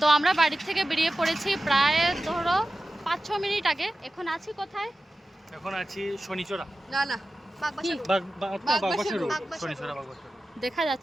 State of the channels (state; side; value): normal; both; correlation 0.94